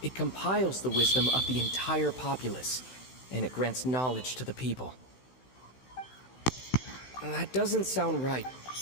It compiles the wisdom of the entire populace, and it grants knowledge to the people. That doesn't sound right.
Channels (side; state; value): right; late; 16 ms